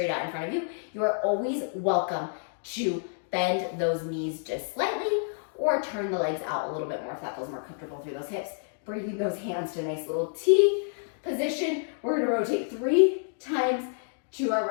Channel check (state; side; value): silent; right; digital silence